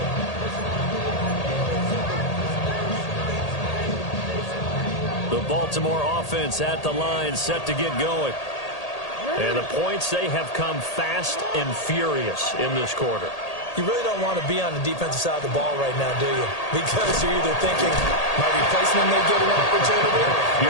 The Baltimore offense at the line, set to get going. And the points, they have come fast and furious in this quarter. You really don't want to be on the defensive side of the ball right now, do you? Because you're either thinking, my replacement may get an opportunity.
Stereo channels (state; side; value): late; right; 1.8 ms